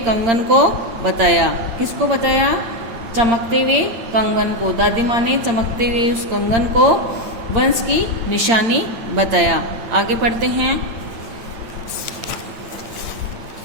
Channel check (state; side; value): late; left; 8.8 ms